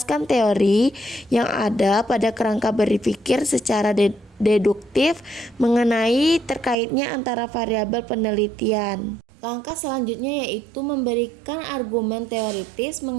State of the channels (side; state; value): left; drops out; at 6.8 s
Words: teori yang ada pada kerangka berpikir secara deduktif mengenai terkaitnya antara variabel penelitian. Langkah selanjutnya yaitu memberikan argumen teoritis